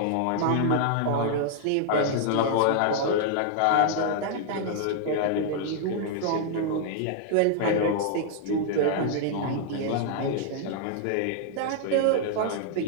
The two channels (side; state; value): both; different; correlation -0.01